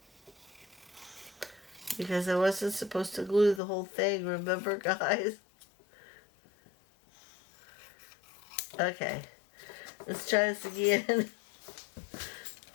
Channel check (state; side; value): drops out; right; at 3.6 s